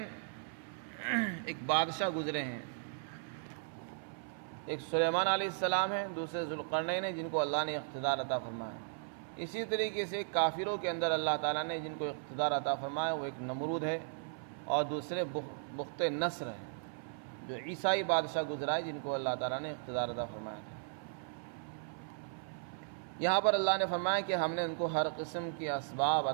ایک بادشاہ گزرے ہیں، ایک سلیمان علیہ السلام ہیں، دوسرے ذوالقرنین ہیں جن کو اللہ نے اقتدار عطا فرمایا۔ اسی طریقے سے کافروں کے اندر اللہ تعالیٰ نے جن کو اقتدار عطا فرمایا وہ ایک نمرود ہے اور دوسرے بخت نصر ہے، جو عیسائی بادشاہ گزرا ہے جن کو اللہ تعالیٰ نے اقتدار عطا فرمایا تھا۔ یہاں پر اللہ نے فرمایا کہ ہم نے ان کو ہر قسم کے اسباب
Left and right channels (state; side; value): silent; left; 53 dB below the other